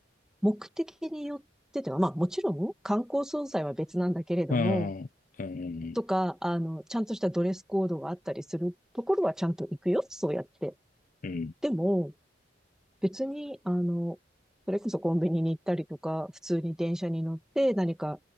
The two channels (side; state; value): both; normal; correlation 0.96